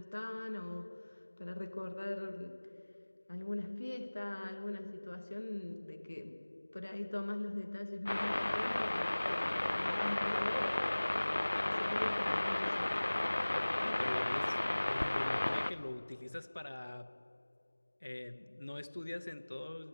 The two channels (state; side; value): inverted; both; correlation -1.00